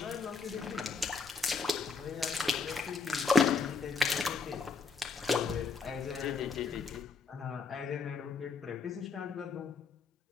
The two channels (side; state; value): right; quieter; 4.6 dB